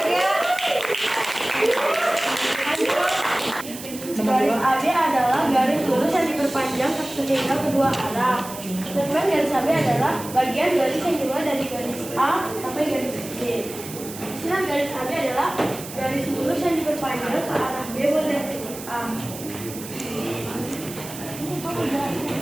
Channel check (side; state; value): right; noise; hiss, 12 dB below the sound